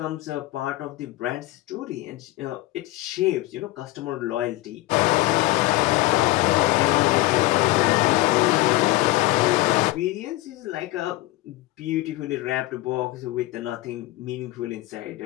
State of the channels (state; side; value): quieter; right; 18.5 dB